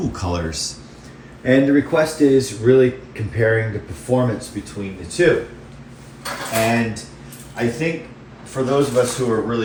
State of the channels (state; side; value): identical; both; correlation 1.00